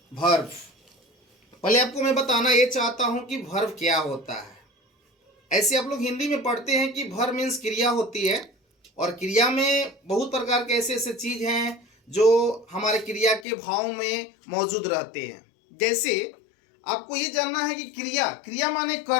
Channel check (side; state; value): right; drops out; at 13.5 s